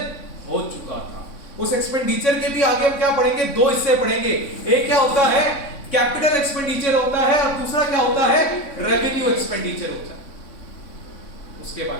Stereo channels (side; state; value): right; late; 3.6 ms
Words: हो चुका था। उस एक्सपेंडिचर के भी आगे हम क्या पढ़ेंगे, 2 हिस्से पढ़ेंगे। एक क्या होता है, कैपिटल एक्सपेंडिचर होता है, और दूसरा क्या होता है, रेवेन्यू एक्सपेंडिचर होता है। उसके